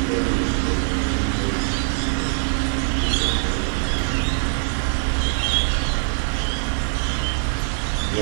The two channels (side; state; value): left; silent; digital silence